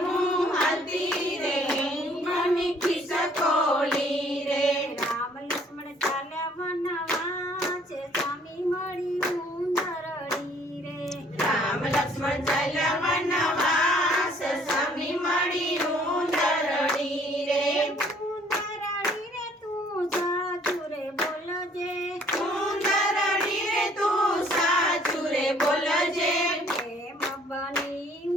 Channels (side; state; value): both; normal; correlation 0.60